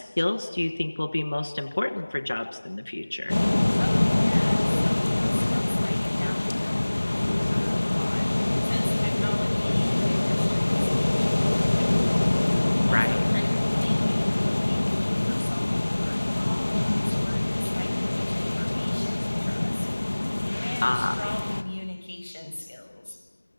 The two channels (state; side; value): inverted; both; correlation -1.00